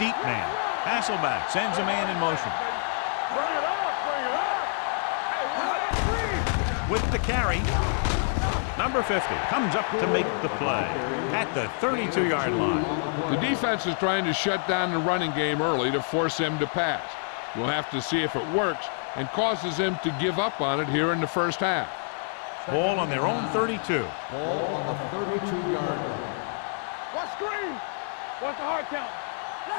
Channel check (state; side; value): silent; right; 59 dB below the other